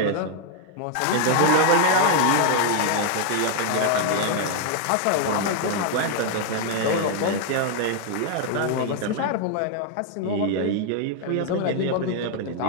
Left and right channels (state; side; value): different; both; correlation 0.00